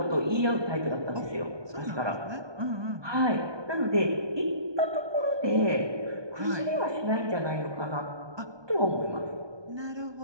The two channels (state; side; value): late; left; 1.2 ms